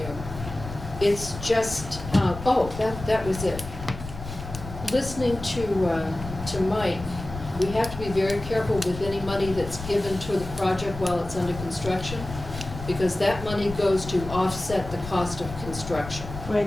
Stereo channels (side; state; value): left; noise; rumble, 11 dB below the sound